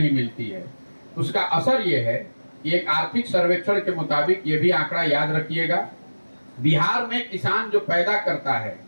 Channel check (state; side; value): inverted; both; correlation -1.00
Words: मिलती है। उसका असर ये है कि एक आर्थिक सर्वेक्षण के मुताबिक, ये भी आंकड़ा याद रखिएगा, बिहार में किसान जो पैदा करता है